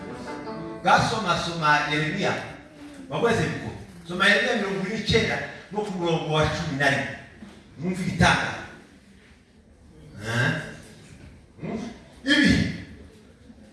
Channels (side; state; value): both; identical; correlation 1.00